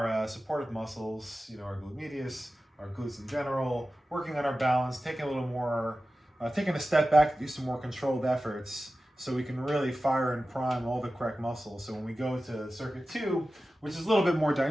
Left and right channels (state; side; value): normal; both; correlation 0.95